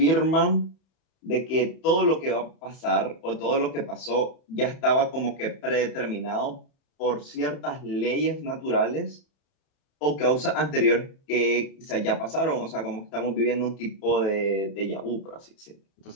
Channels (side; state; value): right; late; 31 ms